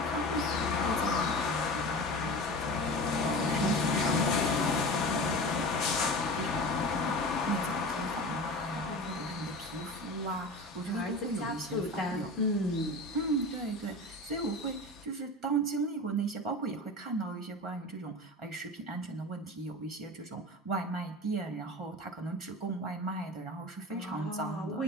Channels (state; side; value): normal; both; correlation 0.32